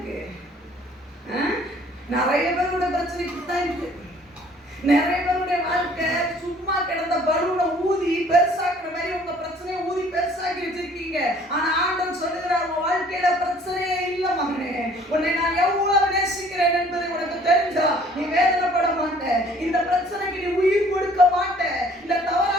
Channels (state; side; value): normal; both; correlation 0.56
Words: நிறைய பேரோட பிரச்சனை இப்படித்தான் இருக்கு. நிறைய பேருடைய வாழ்க்கை சும்மா கிடந்த பலூனை ஊதி பெருசாக்குற மாதிரி உங்க பிரச்சனையை ஊதி பெருசாக்கி வச்சிருக்கீங்க. ஆனா ஆண்டவன் சொல்லுகிறார், உங்க வாழ்க்கையில பிரச்சனையே இல்ல மகனே. உன்னை நான் எவ்வளவு நேசிக்கிறேன் என்பதை உனக்கு தெரிஞ்சா நீ வேதனைப்பட மாட்ட. இந்த பிரச்சனைக்கு நீ உயிர் கொடுக்க மாட்ட. இந்த